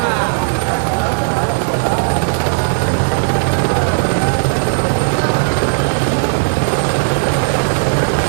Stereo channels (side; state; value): left; silent; digital silence